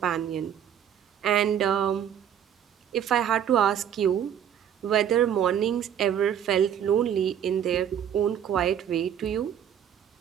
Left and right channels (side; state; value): left; quieter; 9.3 dB